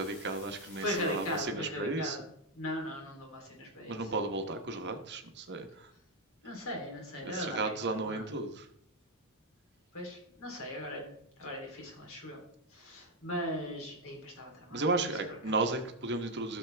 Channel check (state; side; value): normal; both; correlation 0.04